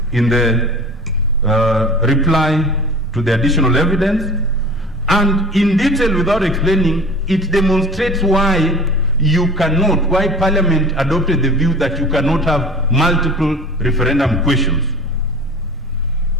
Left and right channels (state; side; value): normal; both; correlation 0.40